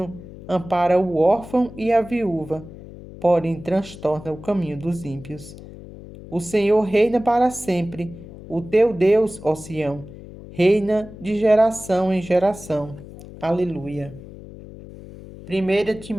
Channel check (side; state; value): left; noise; hum, 16 dB below the sound